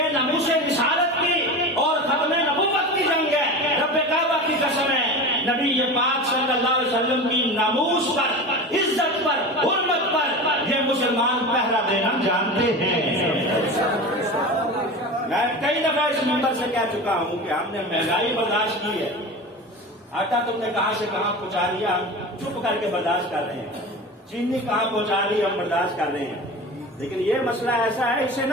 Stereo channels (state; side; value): normal; both; correlation 0.30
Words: ناموس رسالت کی اور ختم نبوت کی جنگ ہے. رب کعبہ کی قسم ہے, نبی پاک صلی اللہ علیہ وسلم کی ناموس پر, عزت پر, حرمت پر یہ مسلمان پہرا دینا جانتے ہیں. میں کئی دفعہ اس ممبر سے کہہ چکا ہوں کہ ہم نے مہنگائی برداشت کی ہے. آٹا تم نے کہاں سے کہاں پہنچا دیا, ہم چپ کر کے برداشت کر رہے ہیں. چینی کہاں پہنچا دی, ہم برداشت کر رہے ہیں. لیکن یہ مسئلہ ایسا ہے, اسے